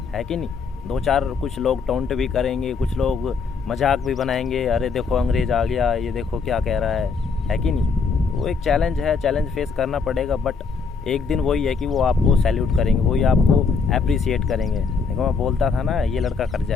है कि नहीं। दो चार कुछ लोग टोंट भी करेंगे, कुछ लोग मजाक भी बनाएंगे, अरे देखो अंग्रेज़ आ गया, ये देखो क्या कह रहा है कि नहीं। वो एक चैलेंज है, चैलेंज फेस करना पड़ेगा, बट एक दिन वही है कि वो आपको सैल्यूट करेंगे, वही आपको अप्रिसिएट करेंगे। देखो मैं बोलता था ना, ये लड़का कर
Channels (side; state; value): right; quieter; 5.1 dB